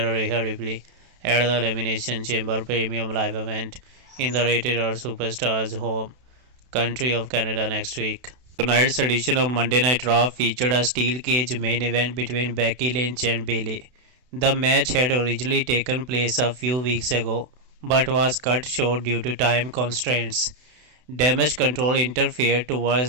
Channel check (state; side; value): late; left; 32 ms